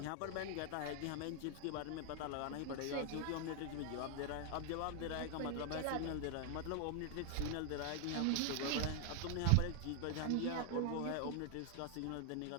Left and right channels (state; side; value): different; both; correlation 0.00